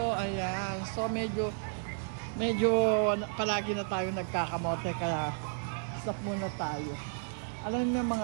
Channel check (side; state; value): left; silent; 56 dB below the other